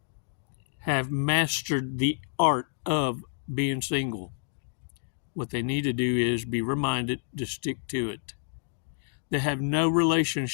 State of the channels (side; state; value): right; silent; digital silence